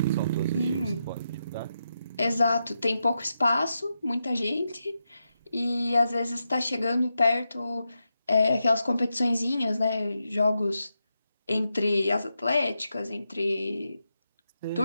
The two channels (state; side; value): inverted; both; correlation -0.87